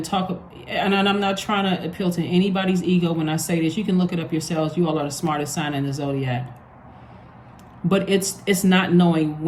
talk, and I'm not trying to appeal to anybody's ego when I say this. You can look it up yourselves. You all are the smartest sign in the Zodiac. But it's not knowing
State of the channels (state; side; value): identical; both; correlation 1.00